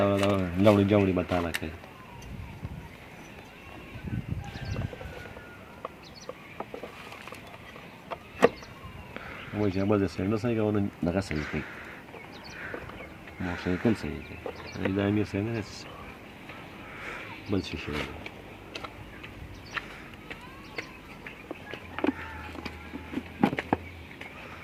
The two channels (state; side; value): identical; both; correlation 1.00